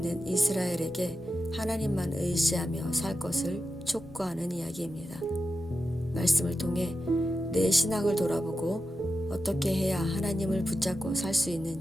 이스라엘에게 하나님만 의지하며 살 것을 촉구하는 이야기입니다. 말씀을 통해 내 신앙을 돌아보고 어떻게 해야 하나님을 붙잡고 살 수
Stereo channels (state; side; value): normal; both; correlation 0.90